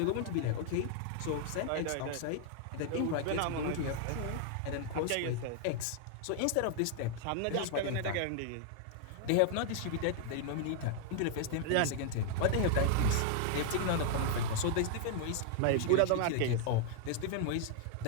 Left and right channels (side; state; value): both; different; correlation 0.00